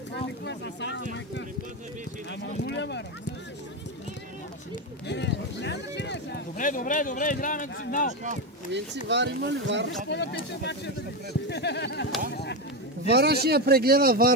Добре, играем на сигнал. Винци, Вар има ли Вар? Вара ще я прегледа,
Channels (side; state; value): both; normal; correlation 0.12